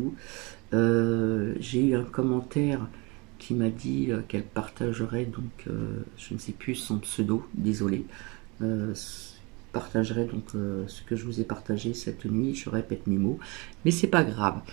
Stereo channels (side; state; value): left; quieter; 27.9 dB